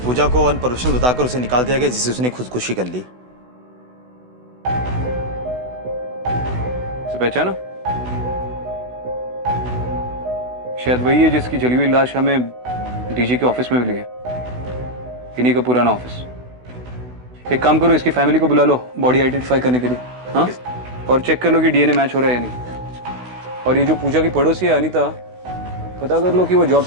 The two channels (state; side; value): late; left; 16 ms